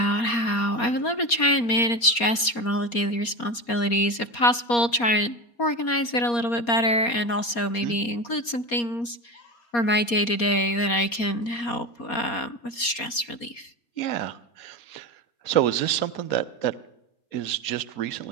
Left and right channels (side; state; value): right; late; 4.2 ms